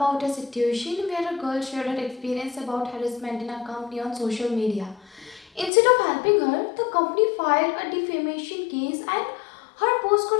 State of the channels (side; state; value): right; drops out; at 5.7 s